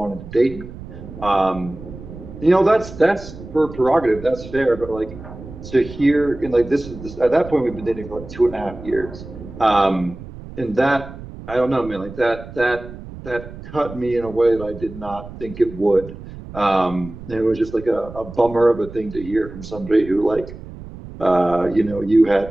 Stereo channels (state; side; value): noise; right; rumble, 14 dB below the sound